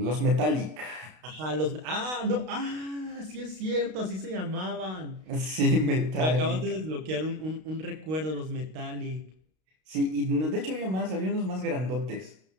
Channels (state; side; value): late; left; 32 ms